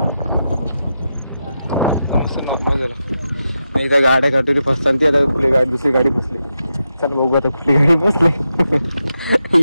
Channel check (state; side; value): inverted; both; correlation -0.87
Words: नॉर्मल झाला. नाही तर गाड्या काढतो ते फसतात. ती आता कुठली गाडी दुसरी गाडी फसली. चला बघू आता कुठली गाडी फसली.